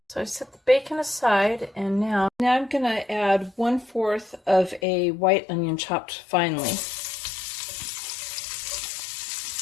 So I set the bacon aside, and now I'm going to add 1/4 of a white onion chopped finely.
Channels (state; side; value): drops out; right; at 4.8 s